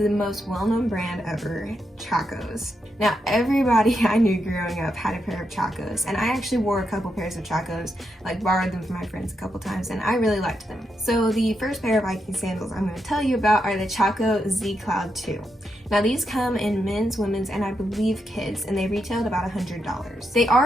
most well-known brand ever, Chaco Z. Now, everybody I knew growing up had a pair of Chaco Z, and I actually wore a couple pairs of Chaco Z, borrowed them from my friends a couple times, and I really liked them. So the first pair of hiking sandals I'm going to tell you about are the Chaco Z Cloud 2. Now these come in men's, women's, and I believe kids, and they retailed about $100. They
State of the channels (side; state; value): both; normal; correlation 0.83